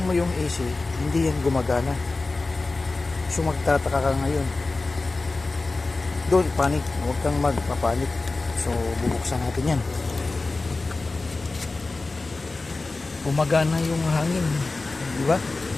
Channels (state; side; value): quieter; right; 3.5 dB